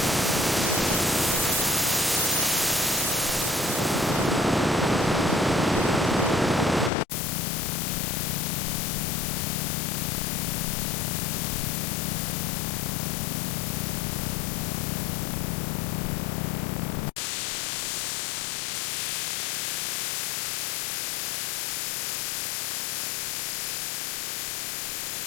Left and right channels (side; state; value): right; drops out; at 6.9 s